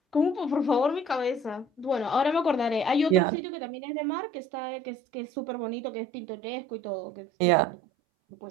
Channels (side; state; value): left; drops out; at 3.2 s